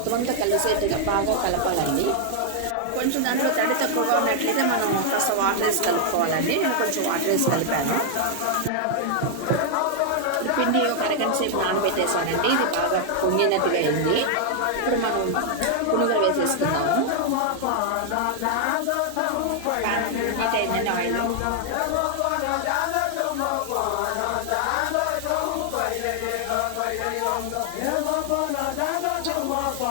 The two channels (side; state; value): both; different; correlation 0.00